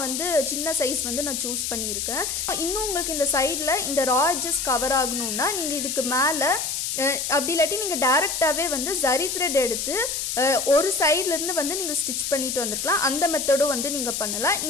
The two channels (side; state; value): left; noise; hiss, 2 dB below the sound